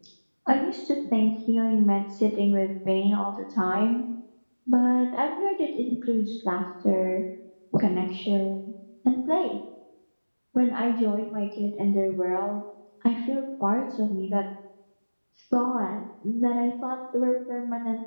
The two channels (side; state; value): both; inverted; correlation -1.00